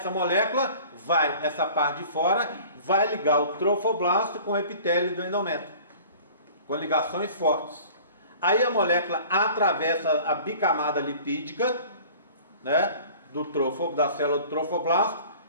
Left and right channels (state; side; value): inverted; both; correlation -0.46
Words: molécula essa parte de fora, vai ligar o trofoblasto com o epitélio do endométrio, com ligações fortes. Aí a molécula atravessa a bicamada lipídica, né, da célula do trofoblasto,